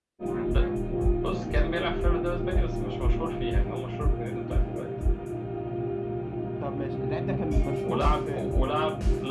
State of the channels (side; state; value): both; identical; correlation 1.00